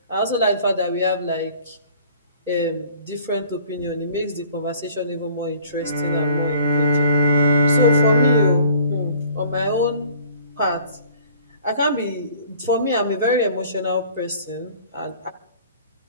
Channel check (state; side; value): inverted; both; correlation -0.52